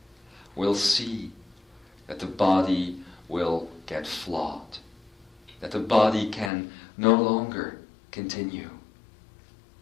will see that the body will get flawed, that the body can no longer continue.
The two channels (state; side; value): drops out; right; at 6.5 s